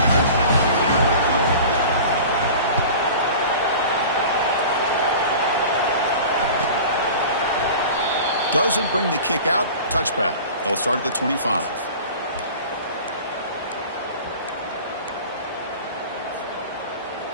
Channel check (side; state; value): both; inverted; correlation -0.38